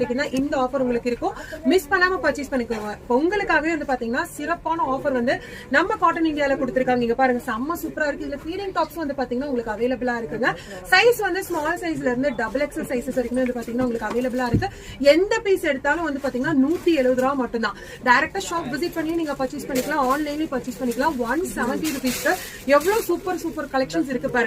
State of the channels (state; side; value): identical; both; correlation 1.00